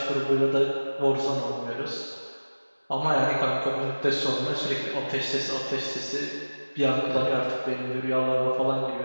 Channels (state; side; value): inverted; both; correlation -1.00